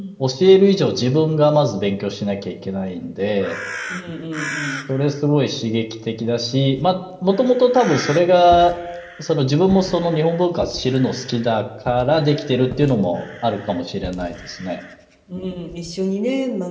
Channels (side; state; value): both; identical; correlation 1.00